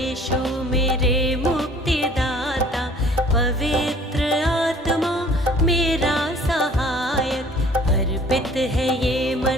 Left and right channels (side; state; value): both; normal; correlation 0.52